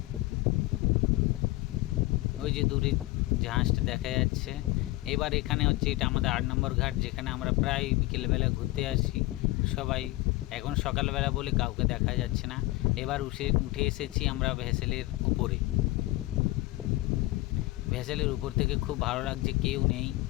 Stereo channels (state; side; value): quieter; right; 19.2 dB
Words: ওই যে দূরে জাহাজটা দেখা যাচ্ছে। এবার এখানে হচ্ছে এটা আমাদের 8 নম্বর ঘাট, যেখানে আমরা প্রায় বিকেলবেলা ঘুরতে আসি সবাই। এখন সকালবেলা বলে কাউকে দেখা যাচ্ছে না। এবার উঠে এসেছি আমরা ভেসেলের উপরে। ভেসেলের উপর থেকে খুব ভালো লাগছে, কেউ নেই,